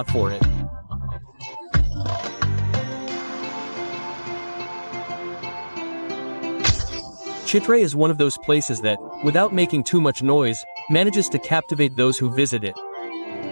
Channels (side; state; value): both; inverted; correlation -1.00